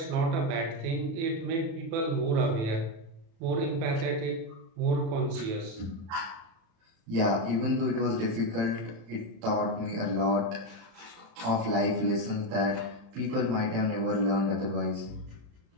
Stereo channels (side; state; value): left; late; 36 ms